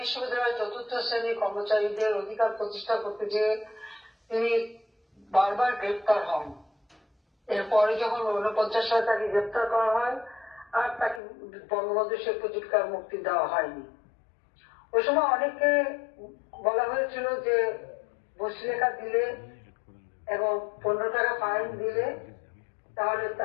বিশ্ববিদ্যালয়ের 4র্থ শ্রেণীর কর্মচারীদের অধিকার প্রতিষ্ঠা করতে যে তিনি বারবার গ্রেপ্তার হন। এরপরে যখন 49 সালে তাকে গ্রেপ্তার করা হয় আর তাকে বঙ্গবন্ধু শেখ মুজিবকে মুক্তি দেওয়া হয়নি। ওই সময় অনেকে বলা হয়েছিল যে বসলেখা দিলে এবং 15 টাকা ফাইন দিলে তাহলে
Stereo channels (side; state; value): right; drops out; at 11.2 s